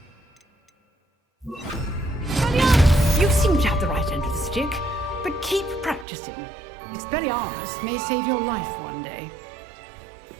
You seem to have the right end of the stick, but keep practicing. Expelliarmus may save your life one day.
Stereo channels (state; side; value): drops out; left; at 6.1 s